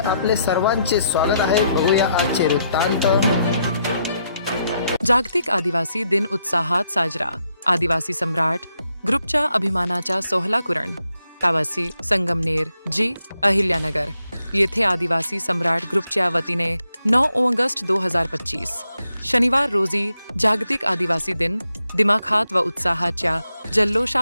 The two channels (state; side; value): inverted; both; correlation -0.79